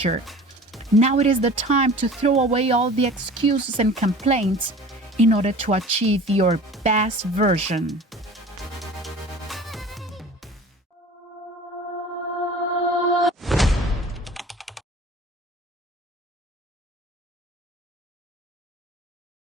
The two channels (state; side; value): normal; both; correlation 0.42